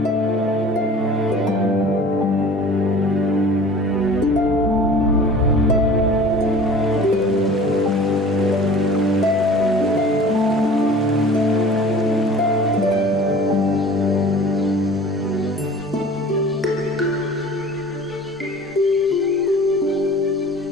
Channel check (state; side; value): normal; both; correlation 0.44